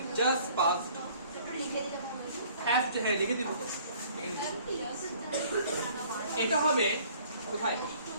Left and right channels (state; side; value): inverted; both; correlation -0.55